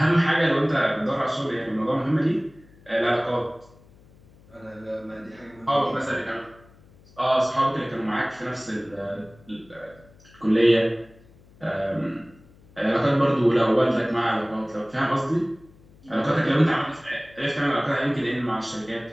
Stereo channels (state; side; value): noise; left; hum, 26 dB below the sound